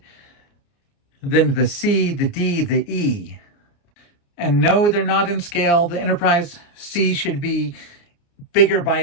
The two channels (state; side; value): late; right; 29 ms